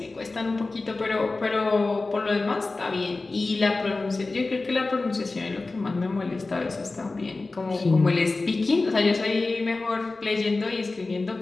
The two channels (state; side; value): quieter; right; 3.5 dB